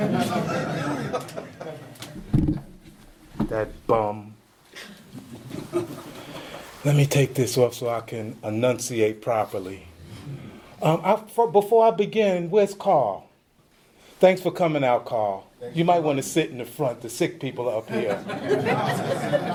That bum. Let me take this off so I can enunciate properly. Before I begin, where's Carl? Thanks for coming out, Carl. You might want to sit in the front. The sick people are up here.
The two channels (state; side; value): identical; both; correlation 1.00